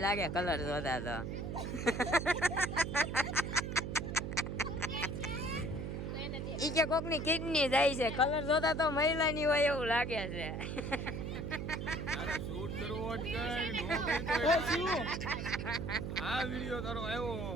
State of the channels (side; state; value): right; noise; hum, 4 dB below the sound